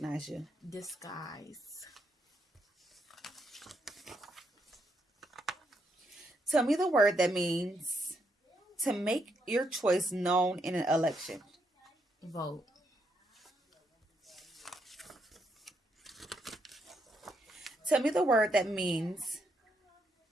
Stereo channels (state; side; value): normal; both; correlation 0.78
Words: you. Disguise. Tell me the word that means to make your choice known in an election. Vote. Tell me the word that means